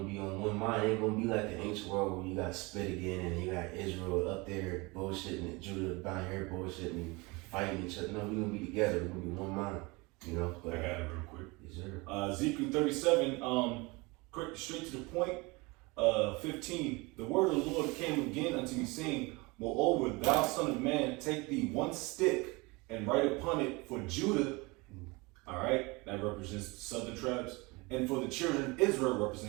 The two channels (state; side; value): quieter; left; 25.4 dB